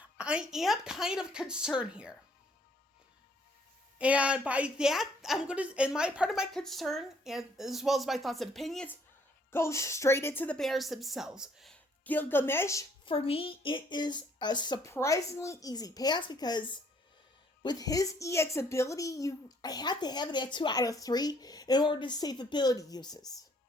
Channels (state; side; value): normal; both; correlation 0.64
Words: I am kind of concerned here. And by that, part of my concern, and as well as my thoughts and opinions, goes straight into the banners themselves. Gilgamesh, for me, it is a surprisingly easy pass, because with his EX ability, I have to have it at 2 out of 3 in order to save ability uses.